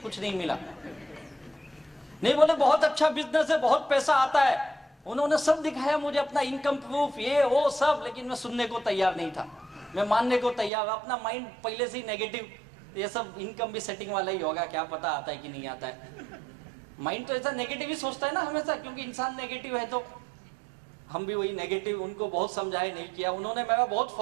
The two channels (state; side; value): drops out; left; at 10.7 s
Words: नहीं मिला। नहीं, बोले बहुत अच्छा बिजनेस है, बहुत पैसा आता है। उन्होंने सब दिखाया मुझे, अपना इनकम प्रूफ, ये वो सब, लेकिन मैं सुनने को तैयार नहीं था। मैं मानने को तैयार, अपना माइंड पहले से ही नेगेटिव। ये सब इनकम भी सेटिंग वाला ही होगा, क्या पता आता है कि नहीं आता है। माइंड तो ऐसा नेगेटिव ही सोचता है ना हमेशा, क्योंकि इंसान नेगेटिव है। तो हम भी वही नेगेटिव। उनको बहुत समझाए, नहीं किया। उन्होंने मेरा बहुत